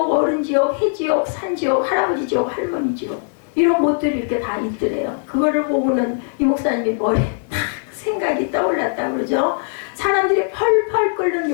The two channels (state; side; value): silent; right; digital silence